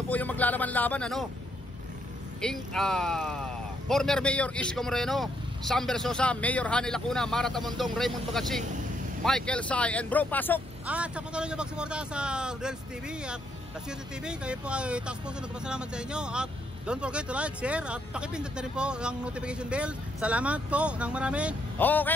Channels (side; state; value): both; normal; correlation 0.74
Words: po yung maglalaban-laban, former Mayor Isko Moreno, Sam Bersosa, Mayor Hani Lacuna, Mara Tamundong, Raymond Bagatsing, Michael Sai, and bro, pasok! At sa patuloy nyo magsuporta sa Rodel's TV at Kasorte TV, kayo po ay taas puso nagpasalamat sa inyo. At don't forget to like, share, at pakipindot na rin po ang notification bell. Salamat po ng marami.